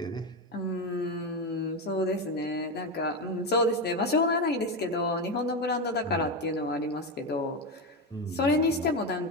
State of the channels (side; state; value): both; normal; correlation 0.13